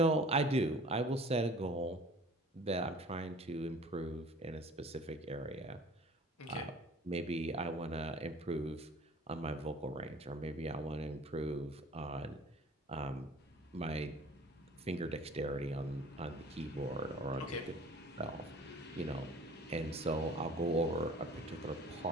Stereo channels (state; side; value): normal; both; correlation 0.47